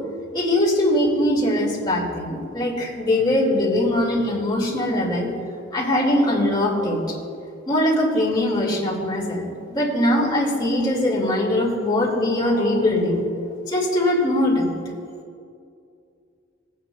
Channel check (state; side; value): normal; both; correlation 0.47